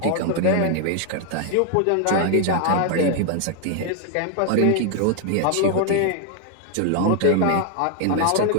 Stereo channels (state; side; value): different; both; correlation 0.00